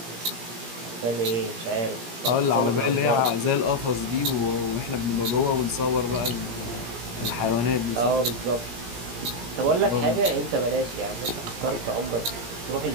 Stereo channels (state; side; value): late; left; 17 ms